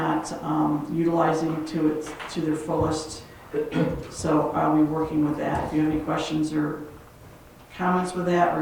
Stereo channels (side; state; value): both; identical; correlation 1.00